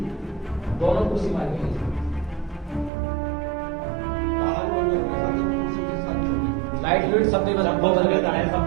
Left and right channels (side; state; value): left; drops out; at 2.9 s